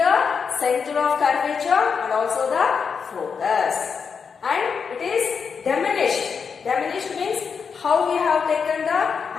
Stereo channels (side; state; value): right; quieter; 6.0 dB